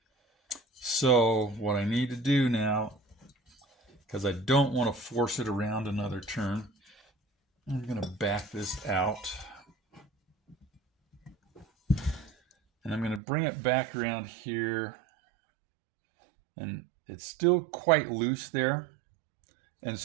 So what I need to do now, because I don't want to force it around another turn, I'm going to back this out. And I'm going to bring it back around here. And it's still quite loose there. And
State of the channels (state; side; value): drops out; left; at 13.2 s